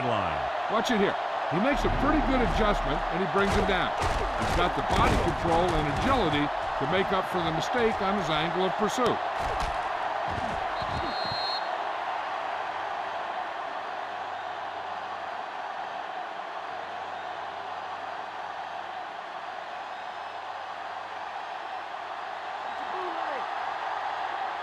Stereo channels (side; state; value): both; identical; correlation 1.00